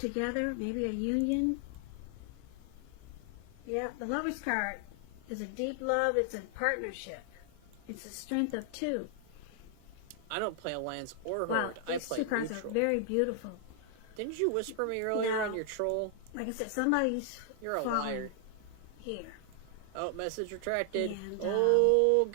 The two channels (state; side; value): different; both; correlation 0.00